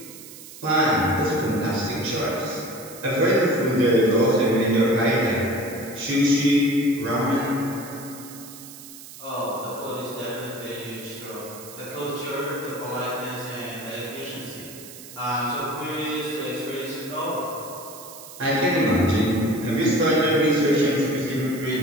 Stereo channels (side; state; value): right; noise; hiss, 16 dB below the sound